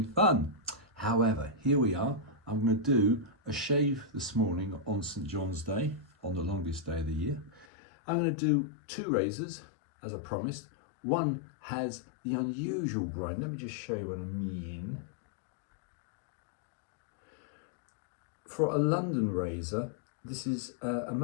fun. However, here we are. I'm going to do a shave this morning on St. John's Day, on the longest day of the year. I'm going to do two razors, as I promised. One has the unusual grind. Let me just show you what I mean. For a London razor, this is a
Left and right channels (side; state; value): right; drops out; at 7.7 s